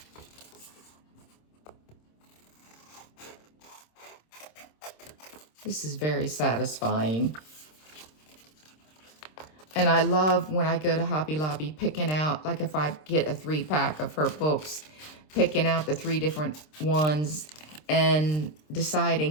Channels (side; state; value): right; late; 26 ms